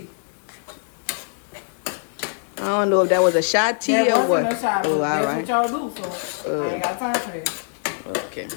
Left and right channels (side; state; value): right; silent; digital silence